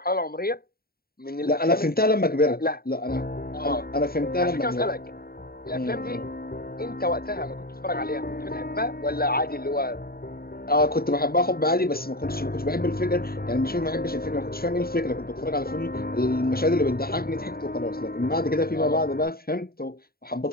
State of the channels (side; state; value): right; late; 0.44 ms